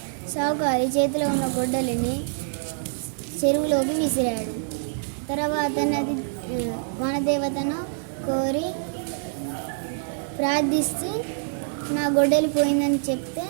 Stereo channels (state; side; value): silent; left; digital silence